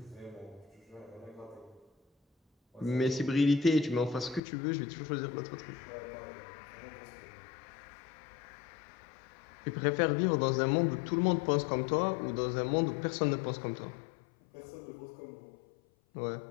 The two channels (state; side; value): drops out; right; at 4.4 s